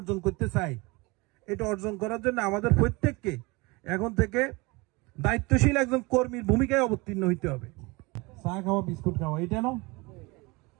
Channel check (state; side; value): quieter; left; 25.2 dB